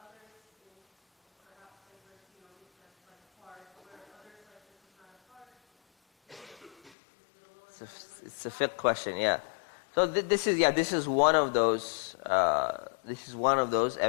It's a fiqh question, yeah. So this is one of those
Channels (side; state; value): right; drops out; at 6.9 s